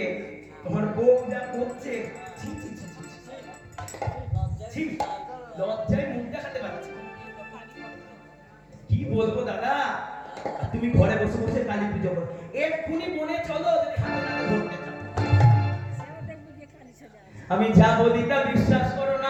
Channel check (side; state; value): both; identical; correlation 1.00